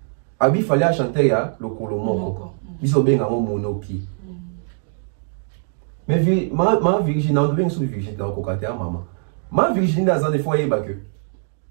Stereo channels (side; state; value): left; silent; 64 dB below the other